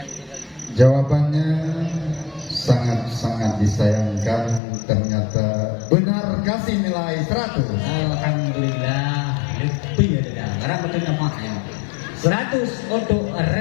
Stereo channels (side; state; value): right; drops out; at 4.6 s